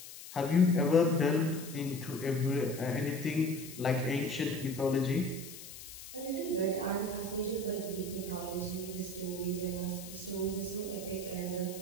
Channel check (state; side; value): noise; left; hiss, 13 dB below the sound